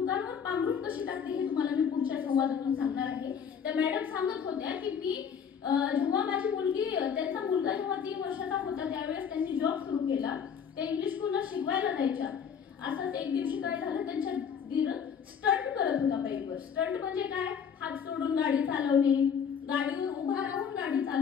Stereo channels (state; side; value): quieter; right; 7.3 dB